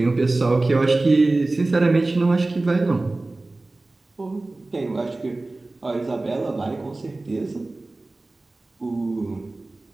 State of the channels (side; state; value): left; quieter; 3.0 dB